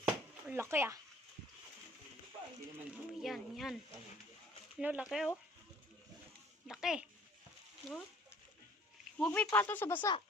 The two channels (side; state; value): both; normal; correlation 0.55